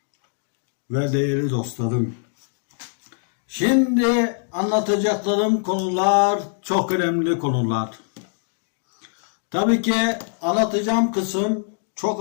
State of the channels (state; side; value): silent; right; digital silence